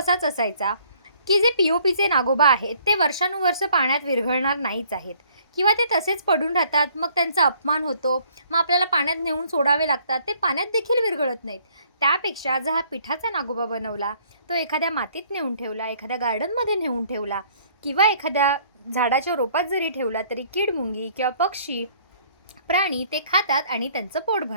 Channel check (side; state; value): both; inverted; correlation -0.61